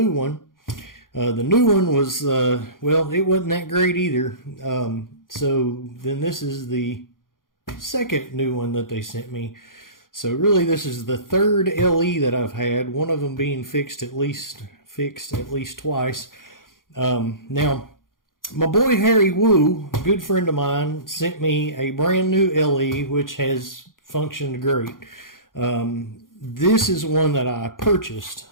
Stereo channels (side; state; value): right; late; 0.90 ms